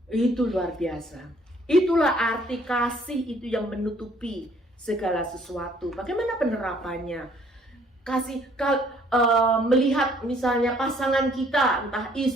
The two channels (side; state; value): both; normal; correlation 0.62